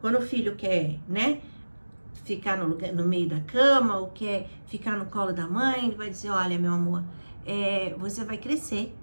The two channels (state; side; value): inverted; both; correlation -1.00